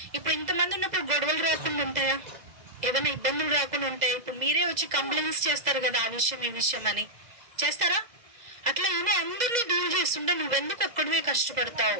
ఇప్పుడు ఇంతమంది ఉన్నప్పుడు గొడవలు రాకుండా ఉంటాయా? ఏదైనా ఇబ్బందులు రాకుండా ఉంటాయి? ఇప్పుడు మీరే వచ్చి కంప్లైంట్స్ చేస్తారు కదా, ఆ విషయం ఈ విషయం అని చేస్తారా? అట్లా ఈయన అందరినీ డీల్ చేస్తుంటే నువ్వెందుకు ఒక్కడివే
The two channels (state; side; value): late; left; 2.0 ms